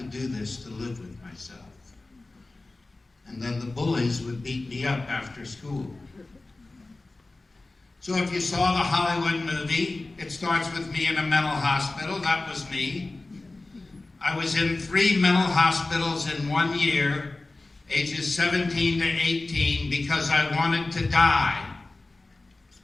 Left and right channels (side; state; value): right; quieter; 3.1 dB